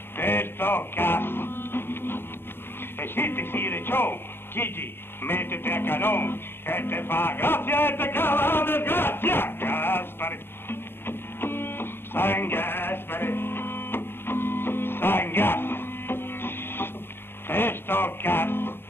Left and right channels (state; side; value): late; right; 0.11 ms